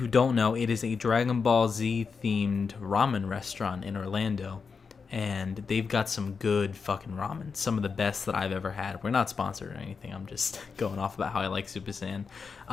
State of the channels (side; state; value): right; quieter; 5.4 dB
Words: don't know, it is a Dragon Ball Z themed ramen restaurant in Orlando, and they've got some good fucking ramen. Some of the best that I've ever had. We're not sponsored or anything. I'm just going off about how I like Super Saiyan.